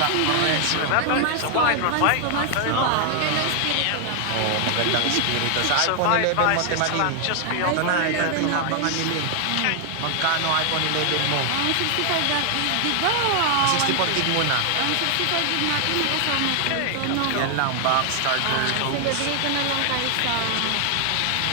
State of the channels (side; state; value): both; different; correlation 0.00